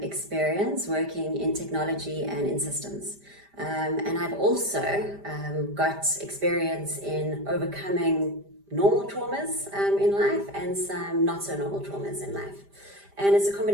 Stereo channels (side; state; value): left; late; 5.0 ms